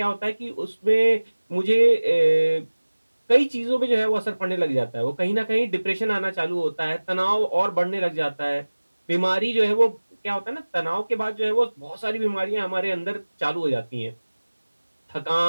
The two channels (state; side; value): inverted; both; correlation -1.00